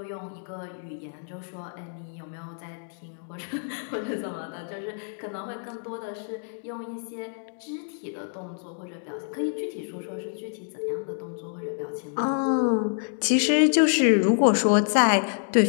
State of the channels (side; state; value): right; silent; digital silence